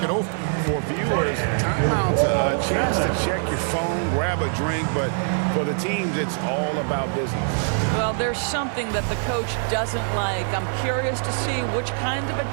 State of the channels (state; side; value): silent; left; digital silence